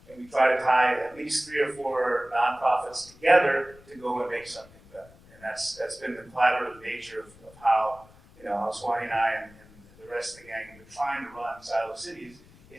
and we try to tie at least 3 or 4 nonprofits together to go and make something better. And that's been the collaborative nature of how how Swanee and I and the rest of the gang have been trying to run Silo Cities,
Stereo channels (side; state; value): left; noise; rumble, 24 dB below the sound